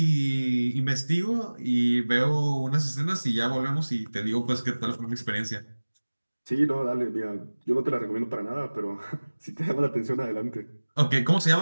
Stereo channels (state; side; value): inverted; both; correlation -1.00